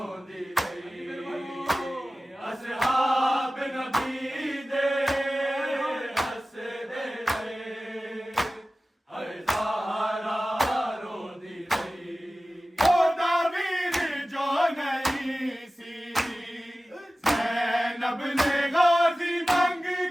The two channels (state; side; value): normal; both; correlation 0.96